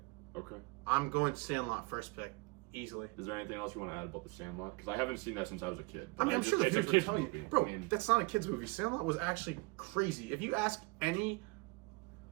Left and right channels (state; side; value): quieter; left; 27.4 dB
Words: Okay. I'm going Sandlot first pick, easily. Is there anything else you want to add about the Sandlot? Because I haven't seen that since I was a kid. I mean, I'm sure the kids would tell you, movie. bro. I mean, That's not a kids movie. Sandlot was actually crazy. If you ask any,